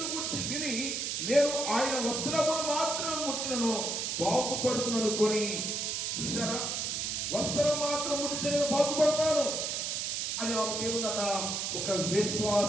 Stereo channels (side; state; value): right; noise; hiss, 1 dB below the sound